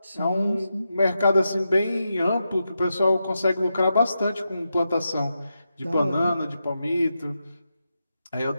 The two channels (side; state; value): both; inverted; correlation -0.87